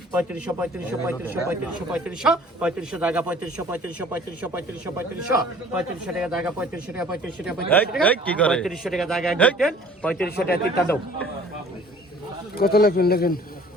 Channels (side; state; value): both; normal; correlation 0.51